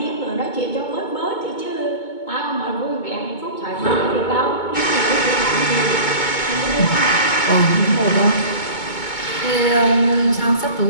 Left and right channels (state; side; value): late; right; 2.2 ms